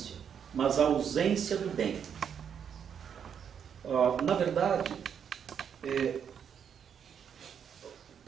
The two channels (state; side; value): quieter; left; 7.9 dB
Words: mas a ausência do bem. Na verdade,